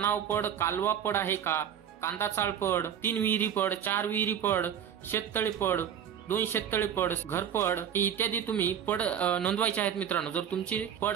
पड, कालवा पड आहे का, कांदा चाळ पड, 3 विहिरी पड, 4 विहिरी पड, शेततळे पड, 2 शेततळे पड, घरपड इत्यादी तुम्ही पड नोंदवायचे आहेत मित्रांनो, जर तुमची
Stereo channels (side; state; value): left; quieter; 9.0 dB